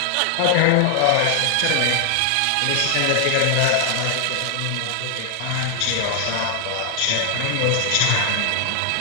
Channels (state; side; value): different; both; correlation 0.00